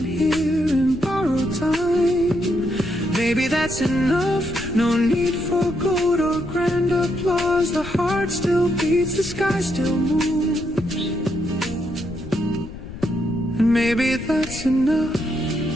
here in borrowed time. Maybe that's enough. No need for gold or grand applause. The heart still beats, the sky still moves, and maybe that's enough.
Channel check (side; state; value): left; noise; rumble, 12 dB below the sound